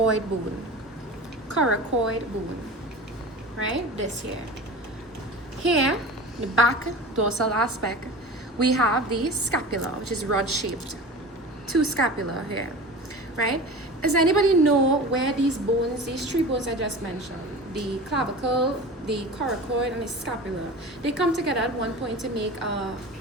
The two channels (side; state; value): both; normal; correlation 0.34